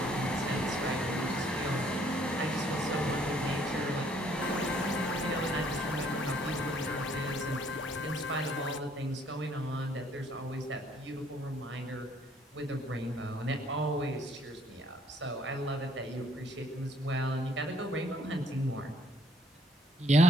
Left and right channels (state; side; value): normal; both; correlation 0.64